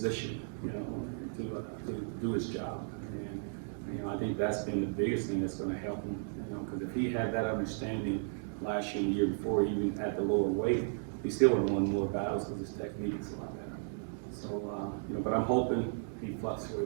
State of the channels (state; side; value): silent; left; digital silence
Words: to do his job. And I think that's been the biggest thing that's going to help him, because if he had that understanding last year and the year before, even at the lower weight, he still would have won more battles because his technique is a lot better. So, but I'm hoping he